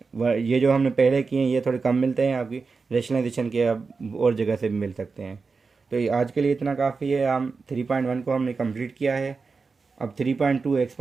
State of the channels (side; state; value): left; quieter; 4.6 dB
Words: ये जो हमने पहले किए हैं ये थोड़े कम मिलते हैं, आपकी रेशनलाइजेशन के अब और जगह से भी मिल सकते हैं। तो ये आज के लिए इतना काफ़ी है। हम 3.1 को हमने कंप्लीट किया है। अब 3.2